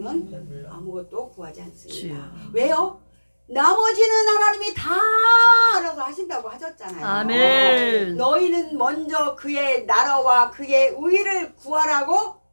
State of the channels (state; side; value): inverted; both; correlation -1.00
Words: 아무것도 구하지 않습니다. 주여. 왜요? 나머지는 하나님이 다 알아서 하신다고 하셨잖아요. 아멘. 너희는 먼저 그의 나라와 그의 의를 구하라고